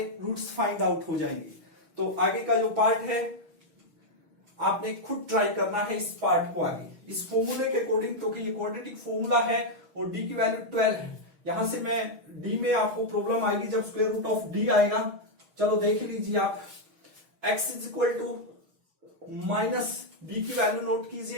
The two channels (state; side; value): late; left; 6.4 ms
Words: रूट्स फाइंड आउट हो जाएंगे। तो आगे का जो पार्ट है आपने खुद ट्राई करना है इस पार्ट को आगे, इस फॉर्मूले के अकॉर्डिंग। तो कि ये क्वाड्रेटिक फॉर्मूला है और d की वैल्यू 12 है। यहां से मैं d में आपको प्रॉब्लम आएगी जब स्क्वायर रूट ऑफ d आएगा। चलो देख लीजिए आप, x is equal to minus, d की वैल्यू नोट